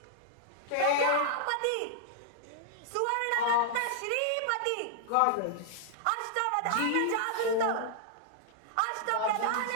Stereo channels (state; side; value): different; both; correlation -0.01